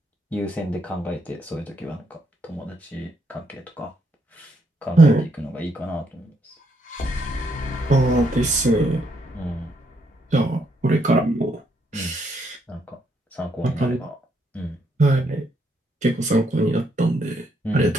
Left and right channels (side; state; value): both; normal; correlation 0.75